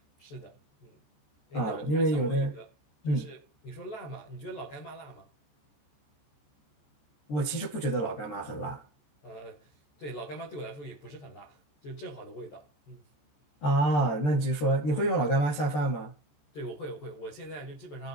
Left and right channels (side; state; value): right; late; 14 ms